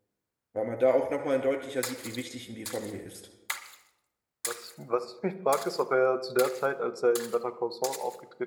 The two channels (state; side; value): identical; both; correlation 1.00